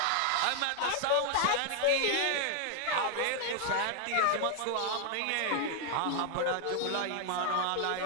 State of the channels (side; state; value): both; different; correlation 0.00